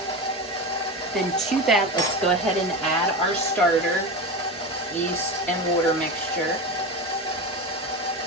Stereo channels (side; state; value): both; normal; correlation 0.24